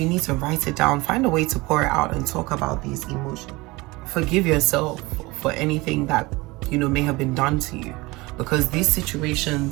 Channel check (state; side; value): quieter; left; 22.4 dB